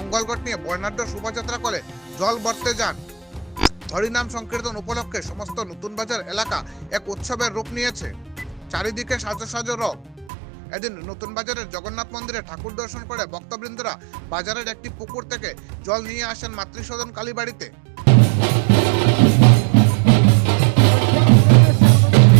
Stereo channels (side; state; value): left; drops out; at 10.3 s